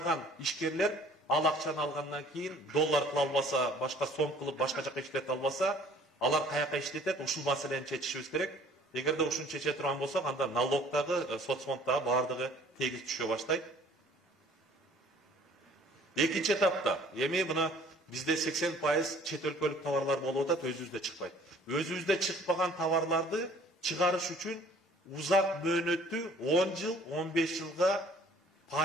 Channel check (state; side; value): normal; both; correlation 0.54